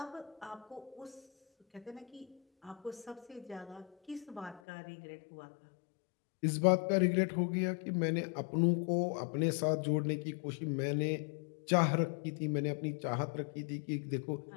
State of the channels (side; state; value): right; drops out; at 4.6 s